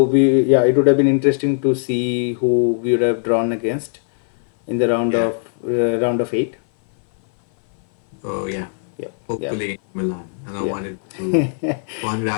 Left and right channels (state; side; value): silent; right; 58 dB below the other